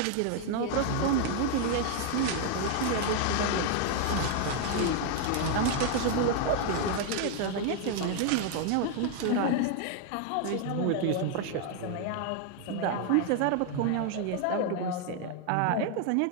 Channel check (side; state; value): both; different; correlation 0.00